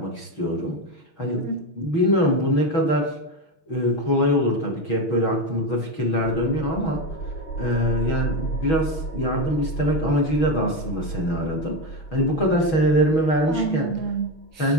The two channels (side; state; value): right; late; 6.2 ms